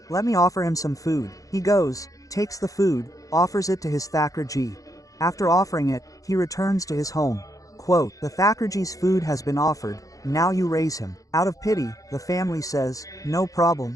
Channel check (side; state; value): right; late; 0.17 ms